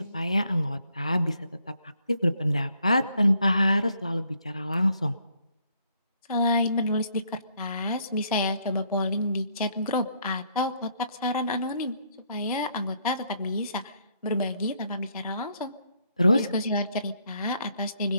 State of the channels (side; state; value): both; inverted; correlation -0.70